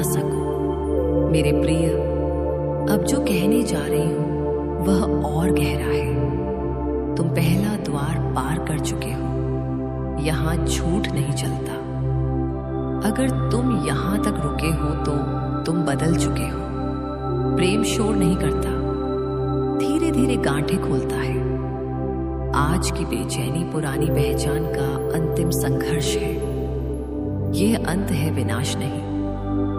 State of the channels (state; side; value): identical; both; correlation 1.00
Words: सको। मेरे प्रिय, अब जो कहने जा रही हूँ वह और गहरा है। तुम पहला द्वार पार कर चुके हो। यहाँ झूठ नहीं चलता। अगर तुम यहाँ तक रुके हो तो तुम बदल चुके हो। प्रेम शोर नहीं करता, धीरे धीरे गांठें खोलता है। आज की बेचैनी पुरानी पहचान का अंतिम संघर्ष है। यह अंत है, विनाश नहीं।